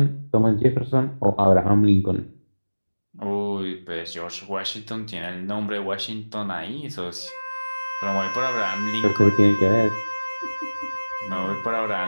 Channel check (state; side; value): inverted; both; correlation -1.00